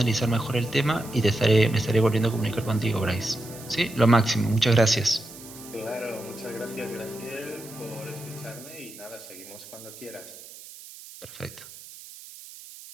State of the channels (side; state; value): right; noise; hiss, 17 dB below the sound